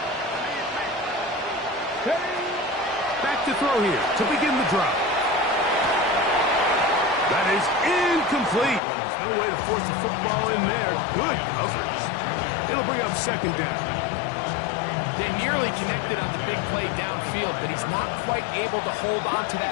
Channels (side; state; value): right; drops out; at 8.8 s